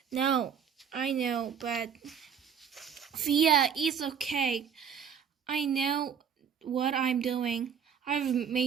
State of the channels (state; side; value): quieter; left; 7.5 dB